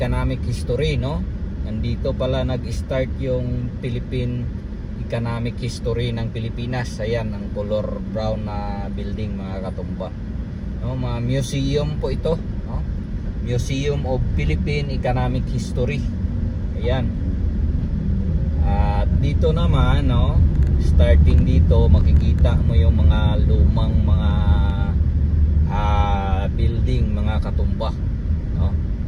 history, no? Nandito pala nag-start yung Philippine economic history ng Pilipinas. Ayan ang color brown na building mga katumba, no? Mga museum po ito, no? Museum of Philippine Economic History. Ayan. At dito naman, no, starting dito makikita mo yung mga lumang mga building mga katumba, no?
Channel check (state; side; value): identical; both; correlation 1.00